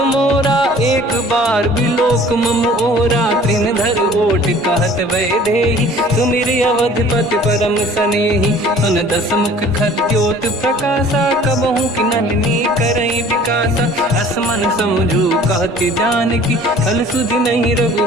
मोरा, एक बार बिलोक मम ओरा, त्रिन धर ओट कहत भय देहि, सुमिर अवधिपति परम सनेहि, सुन दस मुख खद्योत प्रकाशा, कबहु कि नलिनी करई विकासा, असमन समझू कहति जानकी, खल सुधि नहीं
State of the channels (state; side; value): normal; both; correlation 0.50